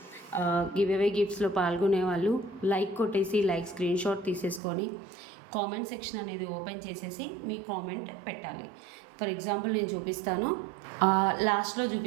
గివ్ అవే గిఫ్ట్స్లో పాల్గొనే వాళ్ళు లైక్ కొట్టేసి లైక్ స్క్రీన్ షాట్ తీసేసుకొని కామెంట్ సెక్షన్ అనేది ఓపెన్ చేసేసి మీ కామెంట్ పెట్టాలి. ఫర్ ఎగ్జాంపుల్ నేను చూపిస్తాను, లాస్ట్లో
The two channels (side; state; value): left; drops out; at 4.6 s